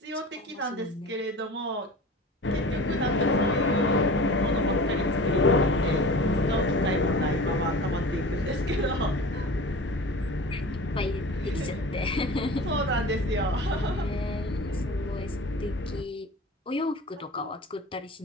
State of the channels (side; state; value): both; normal; correlation 0.37